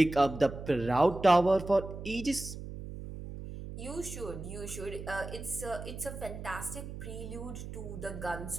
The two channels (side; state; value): right; noise; hum, 10 dB below the sound